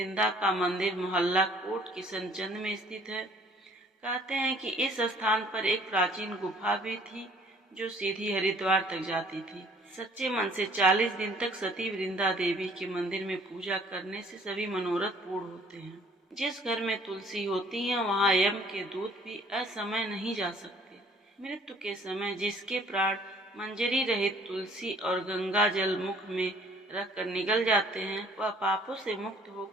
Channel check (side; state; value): both; normal; correlation 0.57